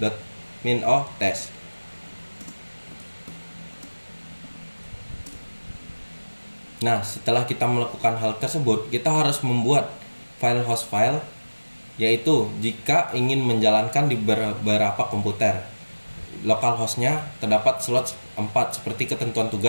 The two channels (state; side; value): inverted; both; correlation -1.00